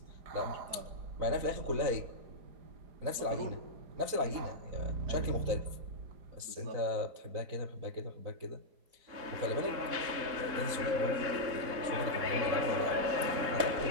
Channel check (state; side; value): late; left; 4.0 ms